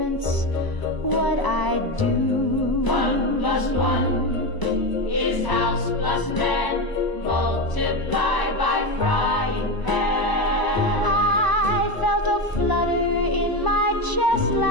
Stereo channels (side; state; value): right; late; 1.0 ms